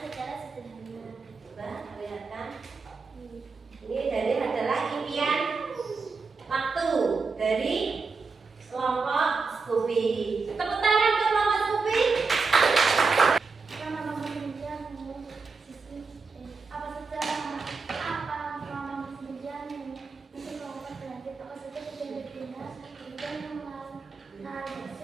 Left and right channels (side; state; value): left; quieter; 4.5 dB